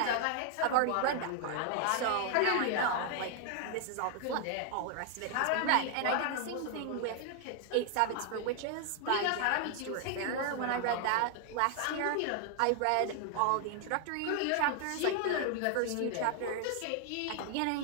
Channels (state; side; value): different; both; correlation 0.00